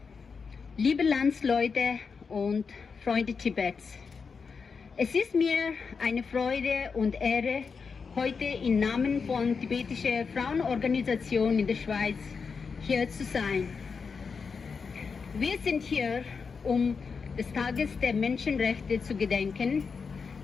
liebe Landsleute und Freunde Tibets. Es ist mir eine Freude und Ehre, heute im Namen von tibetischer Frauenorganisation in der Schweiz hier zu sein. Wir sind hier, um des Tages der Menschenrechte zu gedenken,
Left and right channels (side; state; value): right; quieter; 5.4 dB